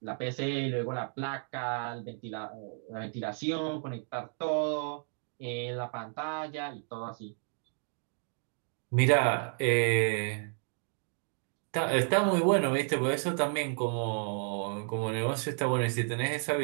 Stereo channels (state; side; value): silent; left; 56 dB below the other